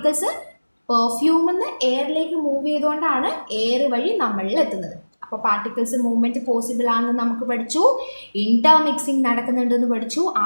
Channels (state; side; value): inverted; both; correlation -1.00